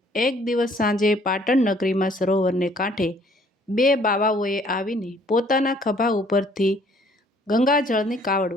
એક દિવસ સાંજે પાટણ નગરીમાં સરોવરને કાંઠે બે બાવાઓએ આવીને પોતાના ખભા ઉપરથી ગંગાજળની કાવડ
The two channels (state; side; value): normal; both; correlation 0.60